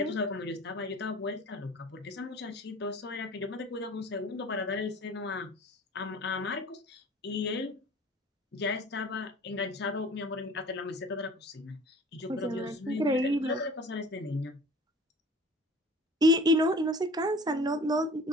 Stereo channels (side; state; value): both; normal; correlation 0.45